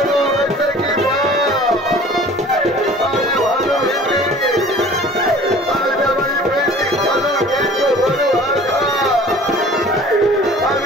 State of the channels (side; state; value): both; normal; correlation 0.47